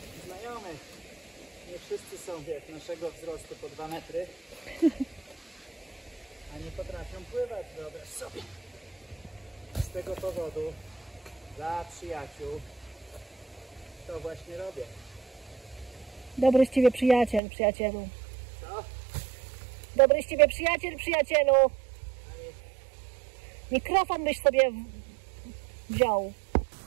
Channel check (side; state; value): left; drops out; at 17.4 s